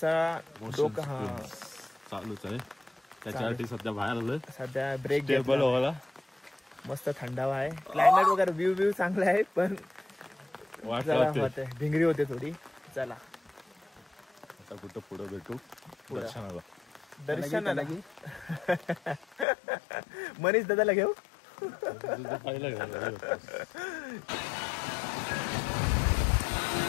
डोकं हा चालूच आहे. त्याच्यासाठी सध्या बाहेर आलोय. सध्या ब्रेक टेबल व्हायला मस्त थंडावा आहे. क्लायमेट वगैरे व्ह्यू चांगला आहे पण होते भिंगरी होते थोडी. चला आता कुठं पुढे भेटू दर्शनाला मनीष दादाला घेऊ.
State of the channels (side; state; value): right; drops out; at 19.5 s